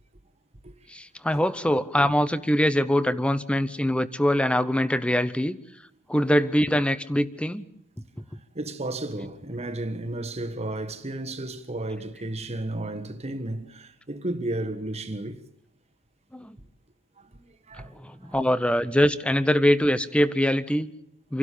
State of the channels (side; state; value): both; normal; correlation 0.89